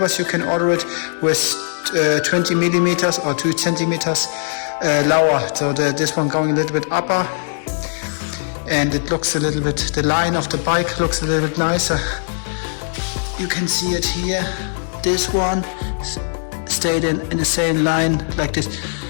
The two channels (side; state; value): right; silent; digital silence